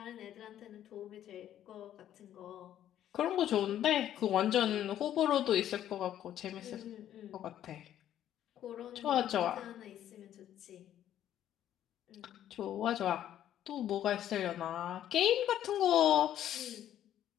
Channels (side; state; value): right; quieter; 11.3 dB